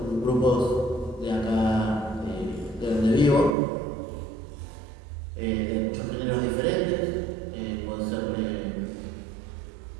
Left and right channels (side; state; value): left; drops out; at 3.6 s